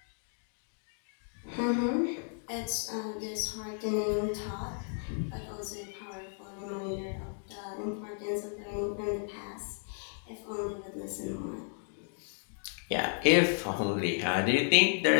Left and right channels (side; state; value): right; silent; 56 dB below the other